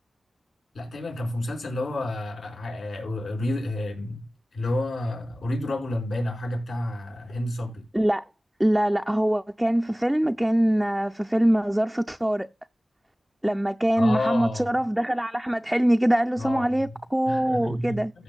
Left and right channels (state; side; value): normal; both; correlation 0.98